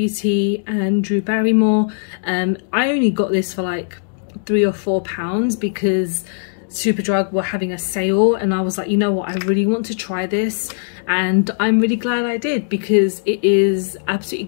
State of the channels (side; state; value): right; silent; digital silence